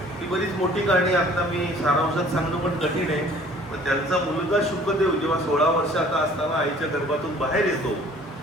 ही बरीच मोठी कहाणी. आता मी सारांशात सांगणं पण कठीण आहे. पण त्यांचा मुलगा शुकदेव जेव्हा 16 वर्षाचा असताना आईच्या गर्भातून बाहेर येतो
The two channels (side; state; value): both; normal; correlation 0.53